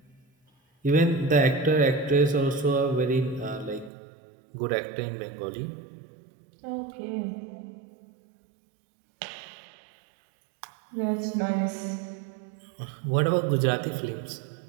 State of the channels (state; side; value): drops out; left; at 3.9 s